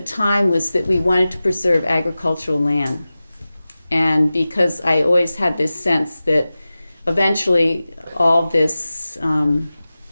time was that we wanted to preserve agricultural land. And because I always had this sense that eventually all this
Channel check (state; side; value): inverted; both; correlation -0.96